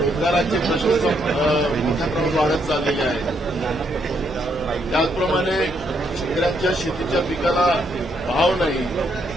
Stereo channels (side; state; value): both; normal; correlation 0.74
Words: प्रश्न मोठ्या प्रमाणात वाढत चाललेले आहेत. त्याचप्रमाणे शेतकऱ्यांच्या शेतीच्या पिकाला भाव नाही